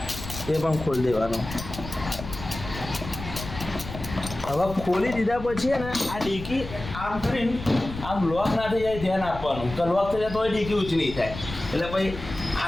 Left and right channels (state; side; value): noise; left; rumble, 10 dB below the sound